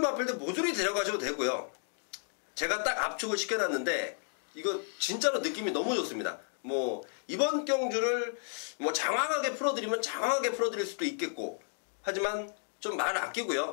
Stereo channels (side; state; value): right; silent; 56 dB below the other